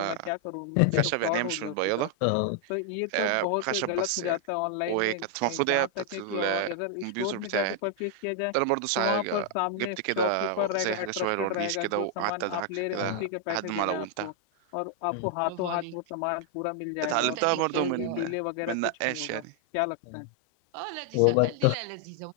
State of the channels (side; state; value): both; different; correlation 0.00